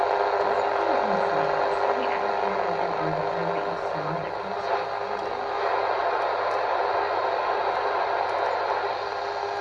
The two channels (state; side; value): identical; both; correlation 1.00